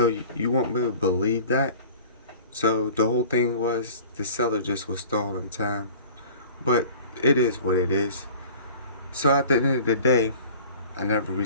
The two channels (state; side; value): inverted; both; correlation -0.44